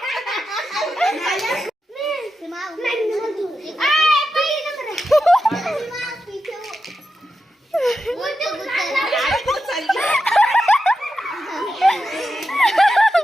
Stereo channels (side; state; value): both; normal; correlation 0.89